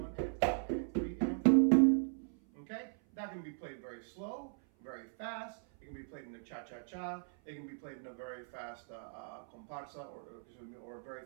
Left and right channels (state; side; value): silent; left; 52 dB below the other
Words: and 2 and 3 and 4 and. Okay? That can be played very slow, very fast. It can be played in a cha-cha-cha. It can be played in a very fast comparsa or a very